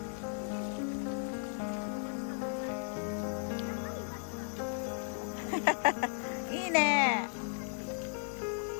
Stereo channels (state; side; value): silent; right; 54 dB below the other